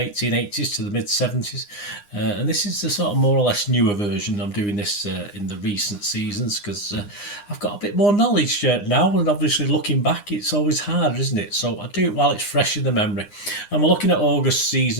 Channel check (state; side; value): late; right; 9.8 ms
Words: to the mid 70s, and this is the sort of more or less newer version. I'm doing this in the recent seasons because I've got a bit more knowledge now, and obviously looking back, it's always harder, isn't it? So I do it while it's fresh in the memory. And we're looking at August